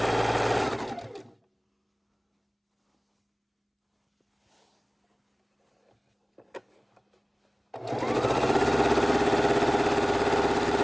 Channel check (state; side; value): identical; both; correlation 1.00